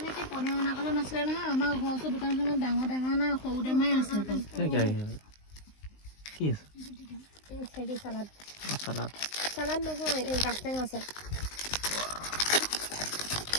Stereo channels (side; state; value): right; late; 19 ms